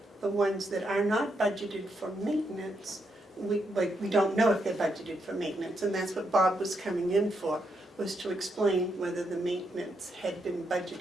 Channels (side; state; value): both; normal; correlation 0.80